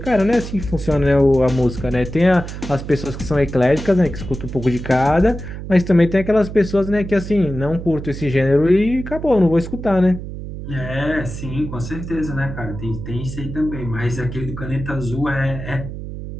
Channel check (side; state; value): right; noise; hum, 9 dB below the sound